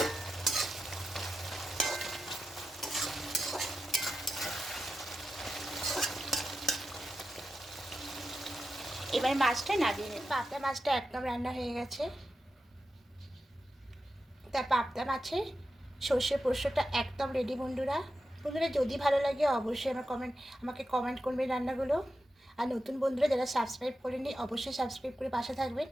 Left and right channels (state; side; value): normal; both; correlation 0.90